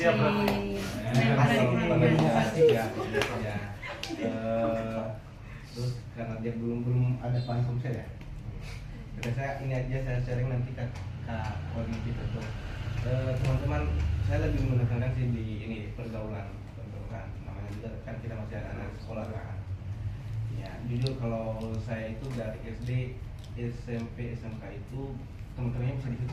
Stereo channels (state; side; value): identical; both; correlation 1.00